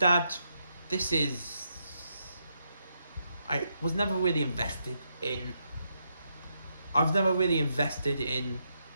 I was never really invested in. I've never really invested in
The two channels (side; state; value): both; inverted; correlation -0.80